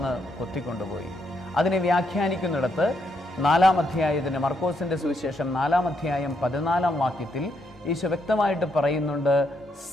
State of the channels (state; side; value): normal; both; correlation 0.77